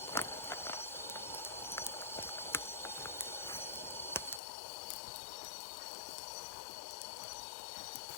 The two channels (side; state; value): right; drops out; at 4.4 s